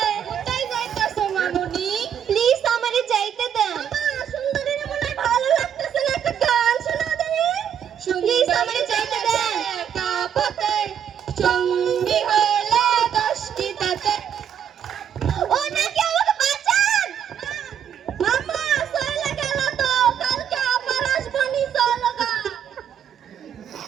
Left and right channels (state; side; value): quieter; left; 8.8 dB